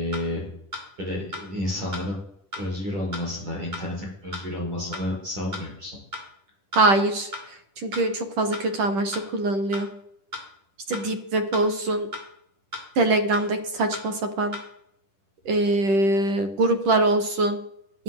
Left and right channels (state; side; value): late; left; 10 ms